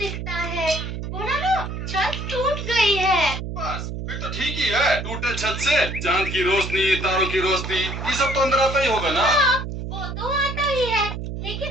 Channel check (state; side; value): noise; right; hum, 6 dB below the sound